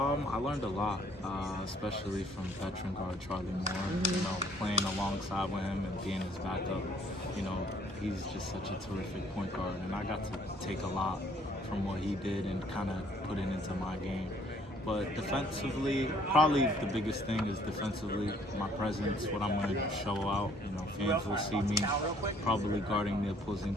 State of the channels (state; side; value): normal; both; correlation 0.61